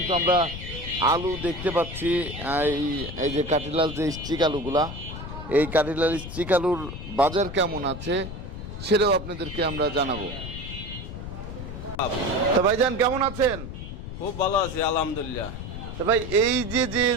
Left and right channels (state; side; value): noise; left; rumble, 9 dB below the sound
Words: আমরা আলু দেখতে পাচ্ছি এই যে কাটিলাল যে স্টিক আলুগুলা, এই কাটিলাল স্টিক আলুর বাজার কেমন আছে সেটাও আপনাদেরকে আমরা জানাবো। তা ভাইজান কেমন আছেন? খুব ভালো আছি আলহামদুলিল্লাহ। তা ভাই, এই যে